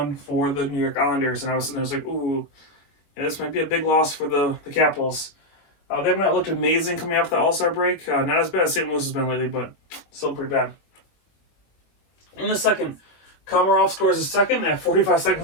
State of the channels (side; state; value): right; late; 21 ms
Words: for the New York Islanders. And I was sitting there, like, ooh, yeah, this might be a big loss for the Capitals. They have not looked amazing coming after the All-Star break. Not as bad as St. Louis has been lately, but still pretty bad. In the second, Komarov scores his second at 45